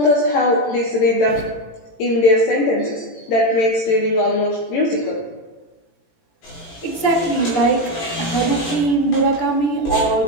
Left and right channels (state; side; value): late; right; 18 ms